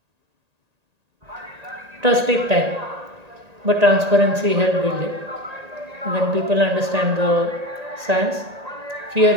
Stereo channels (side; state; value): left; late; 1.8 ms